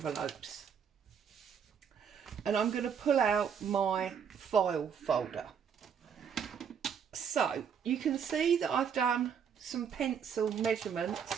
And I'm going to pull out my file folder. So, you can see that I've done some pencil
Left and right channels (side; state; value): left; quieter; 7.4 dB